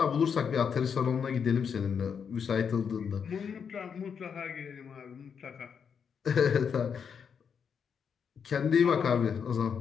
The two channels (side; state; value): right; quieter; 6.8 dB